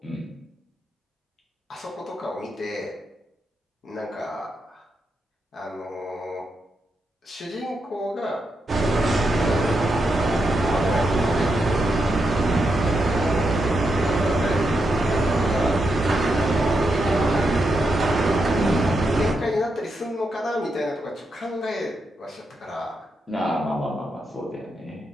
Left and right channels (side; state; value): both; normal; correlation 0.84